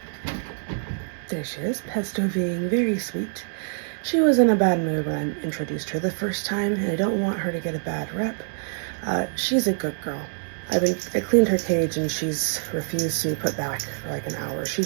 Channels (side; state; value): left; silent; 62 dB below the other